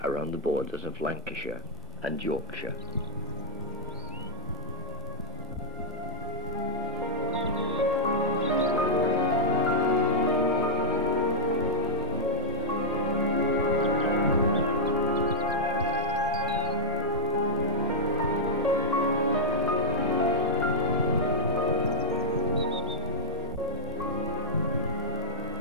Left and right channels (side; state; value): both; normal; correlation -0.10